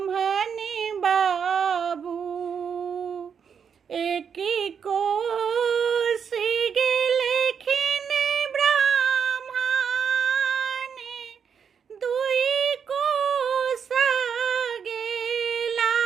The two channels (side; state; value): left; quieter; 7.1 dB